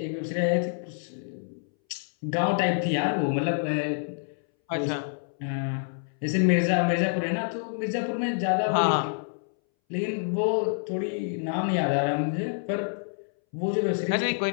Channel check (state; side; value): silent; right; 60 dB below the other